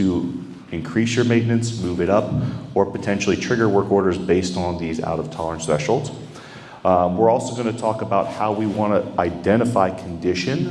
increase your maintenance, move it up, or potentially trigger work orders based on these out-of-tolerance thresholds. We're also going to talk about how we want to identify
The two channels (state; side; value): identical; both; correlation 1.00